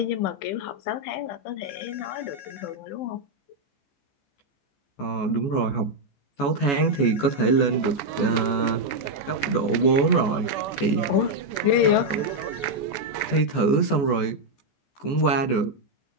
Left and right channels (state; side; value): late; right; 14 ms